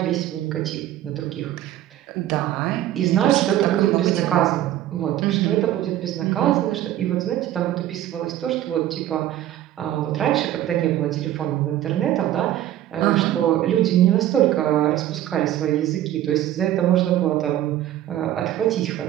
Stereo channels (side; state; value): left; quieter; 12.8 dB